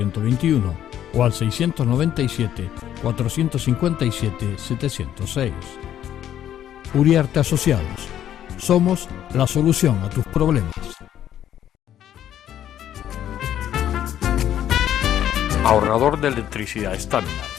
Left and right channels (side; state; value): right; quieter; 11.0 dB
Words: o al 697-457-706. Uriarte Asociados. Somos la solución a tus problemas. Ahorrador de electricidad Estaminal.